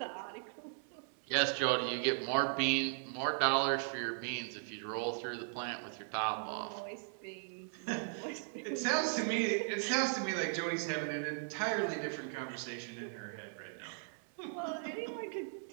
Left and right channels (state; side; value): silent; left; 53 dB below the other